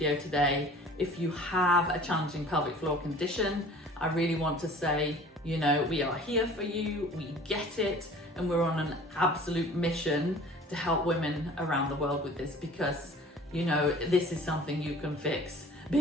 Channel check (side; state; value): both; normal; correlation 0.46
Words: today. If you have a challenging pelvic floor condition, I really want to say, you know, we are here for you, we get it, and we're on an absolute mission to help women around the world with this, because, you know, this is something you can fix